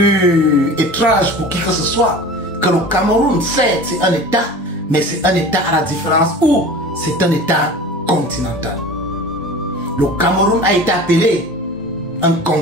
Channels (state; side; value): normal; both; correlation 0.38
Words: étrange pour qui que ce soit, que le Cameroun, certes, c'est un État, mais c'est un État à la différence où c'est un État continental. Le Cameroun a été appelé un